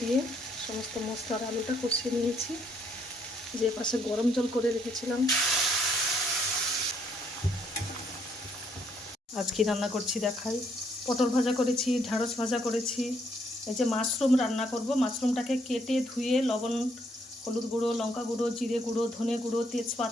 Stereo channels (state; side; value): normal; both; correlation 0.70